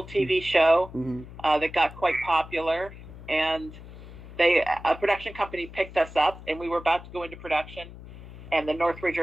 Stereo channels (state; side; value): noise; left; hum, 15 dB below the sound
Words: TV show that got quite popular, and a production company picked us up, and we were about to go into production, and the Northridge